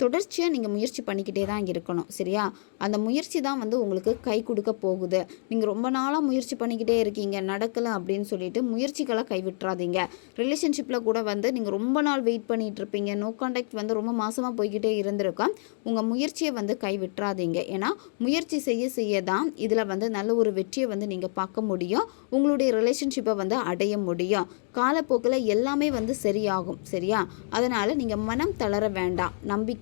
நீங்கள் முயற்சி பண்ணிக்கிட்டே தான் இருக்கணும், சரியா? அந்த முயற்சி தான் வந்து உங்களுக்கு கை கொடுக்க போகுது. நீங்கள் ரொம்ப நாளாக முயற்சி பண்ணிக்கிட்டே இருக்கீங்க, நடக்கலை அப்படின்னு சொல்லிட்டு முயற்சிகளை கைவிட்டுறாதீங்க. ரிலேஷன்ஷிப்பில் கூட வந்து நீங்கள் ரொம்ப நாள் வெயிட் பண்ணிகிட்டு இருப்பீங்க, நோ கான்டாக்ட் வந்து ரொம்ப மாதமாக போய்கிட்டே இருந்திருக்கோம். உங்கள் முயற்சியை வந்து கைவிட்டுறாதீங்க. ஏன்னா முயற்சி செய்ய தான் இதில் வந்து நல்ல ஒரு வெற்றியை வந்து நீங்கள் பார்க்க முடியும், உங்களுடைய ரிலேஷன்ஷிப்பை வந்து அடைய முடியும். காலப்போக்கில் எல்லாமே வந்து சரியாகும், சரியா? அதனால் நீங்கள் மனம் தளர வேண்டாம்,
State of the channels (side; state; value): right; silent; digital silence